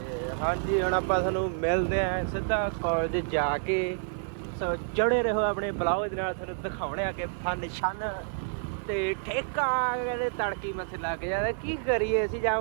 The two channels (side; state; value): left; silent; digital silence